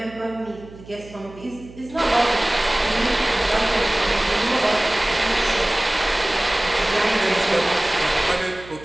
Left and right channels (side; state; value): right; noise; hum, 19 dB below the sound